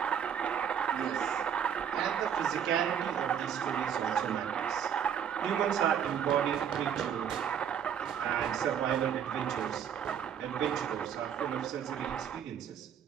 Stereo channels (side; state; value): left; quieter; 8.5 dB